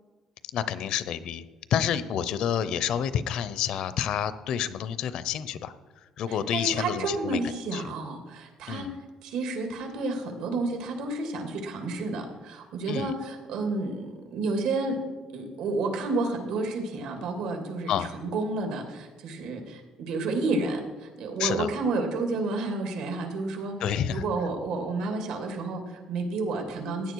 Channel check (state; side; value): normal; both; correlation 0.54